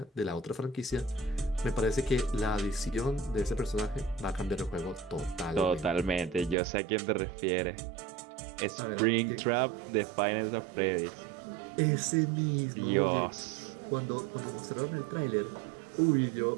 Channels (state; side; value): drops out; left; at 6.6 s